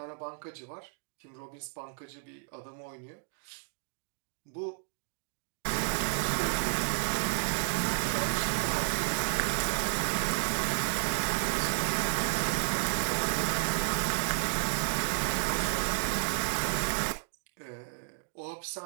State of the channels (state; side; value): silent; left; digital silence